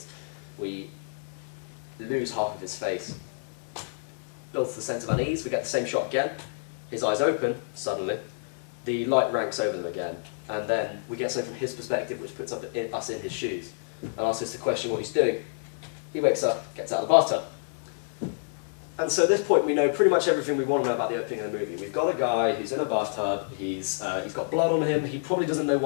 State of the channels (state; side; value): silent; right; 58 dB below the other